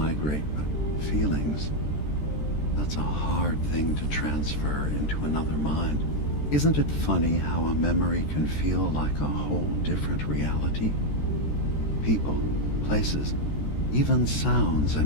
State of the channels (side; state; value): right; late; 13 ms